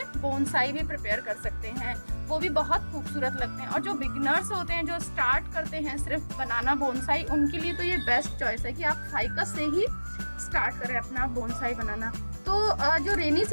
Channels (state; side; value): inverted; both; correlation -1.00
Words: बोनसाई भी प्रिपेयर कर सकते हैं, वो भी बहुत खूबसूरत लगते हैं। और जो बिगिनर्स होते हैं, जो स्टार्ट करते हैं सिर्फ बनाना बोनसाई, उनके लिए तो ये बेस्ट चॉइस है कि आप फाइकस से ही स्टार्ट करें अपना बोनसाई बनाना। तो जो रेनी